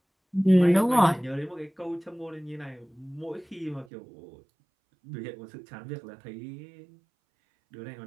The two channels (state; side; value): drops out; left; at 3.9 s